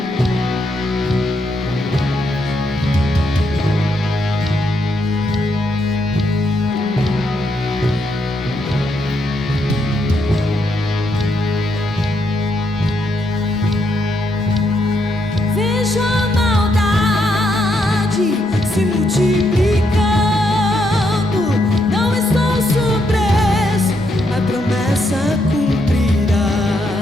Vejo a maldade se multiplicando. Não estou surpreso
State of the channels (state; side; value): normal; both; correlation 0.78